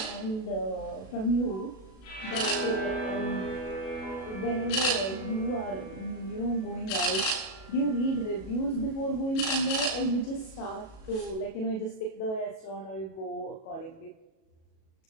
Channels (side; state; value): right; late; 37 ms